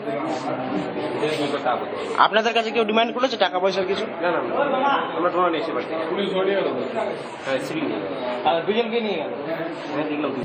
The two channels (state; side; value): identical; both; correlation 1.00